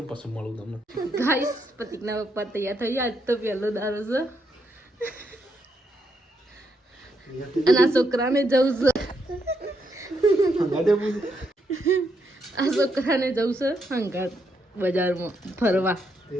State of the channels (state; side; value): normal; both; correlation 0.78